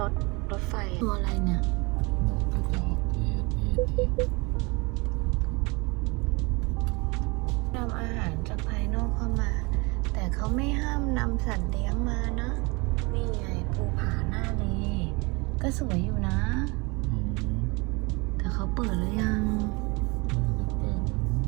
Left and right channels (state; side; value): quieter; left; 27.3 dB